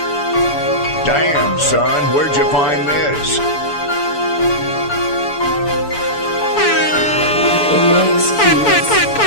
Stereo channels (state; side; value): late; right; 6.9 ms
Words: Damn, son, where'd you find this?